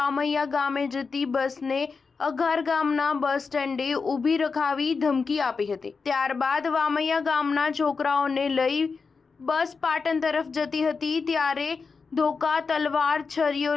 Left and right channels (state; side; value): quieter; right; 4.9 dB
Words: ગામે જતી બસને અઘાર ગામના બસ સ્ટેન્ડે ઊભી રખાવી ધમકી આપી હતી। ત્યારબાદ વામૈયા ગામના છોકરાઓને લઈ બસ પાટણ તરફ જતી હતી ત્યારે ધોકા, તલવાર, છરીઓ